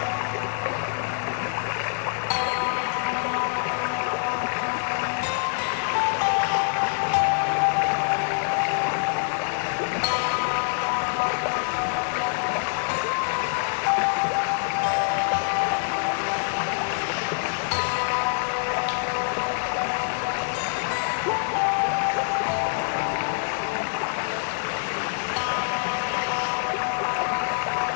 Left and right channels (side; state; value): right; silent; digital silence